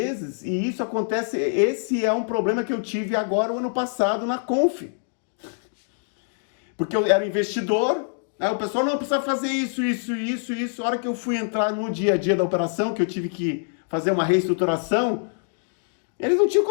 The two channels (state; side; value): silent; right; digital silence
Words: e isso acontece. Esse é um problema que eu tive agora, o ano passado, na Conf. Porque eu era investidor, aí o pessoal não precisa fazer isso. A hora que eu fui entrar no dia a dia da operação, que eu tive que fazer uma reestruturação, Eles não tinham